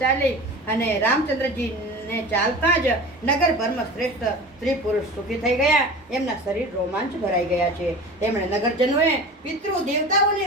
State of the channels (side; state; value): both; normal; correlation 0.35